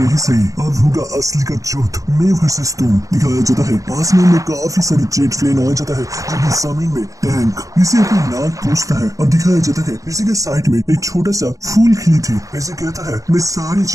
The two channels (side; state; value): left; late; 0.16 ms